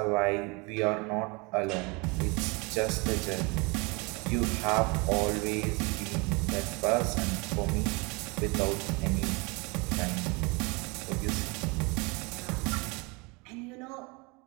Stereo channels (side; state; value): left; quieter; 27.7 dB